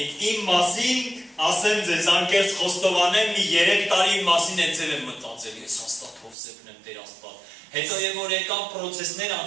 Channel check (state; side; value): drops out; left; at 6.4 s